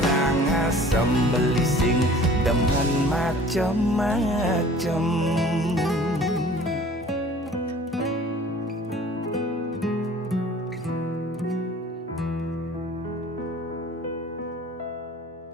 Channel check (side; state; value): both; normal; correlation 0.48